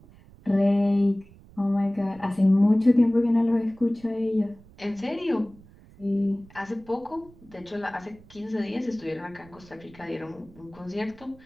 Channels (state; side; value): noise; right; rumble, 24 dB below the sound